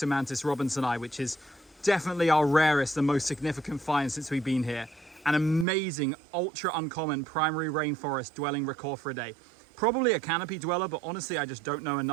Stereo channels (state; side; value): drops out; left; at 5.7 s